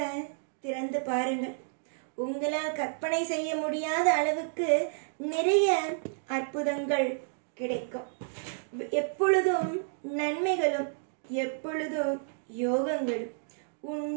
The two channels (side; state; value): left; silent; digital silence